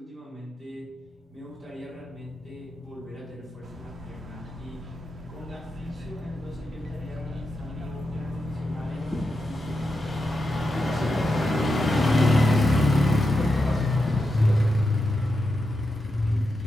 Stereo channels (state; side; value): normal; both; correlation 0.87